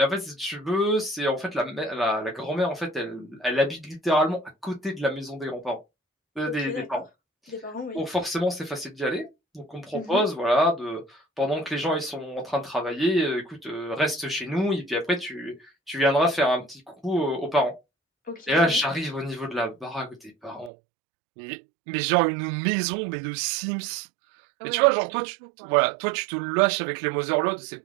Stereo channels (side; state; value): left; drops out; at 20.7 s